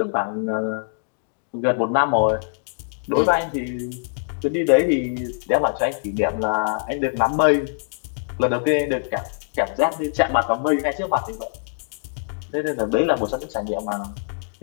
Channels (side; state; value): right; silent; digital silence